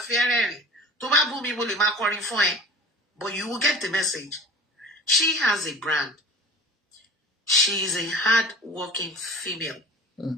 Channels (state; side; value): normal; both; correlation 0.40